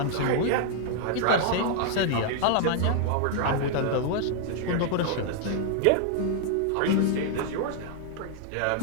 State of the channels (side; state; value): both; different; correlation 0.00